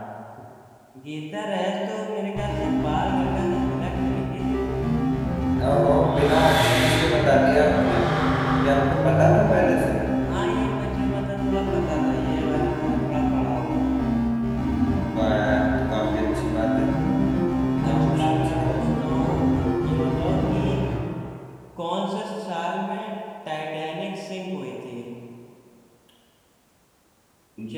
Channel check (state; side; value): identical; both; correlation 1.00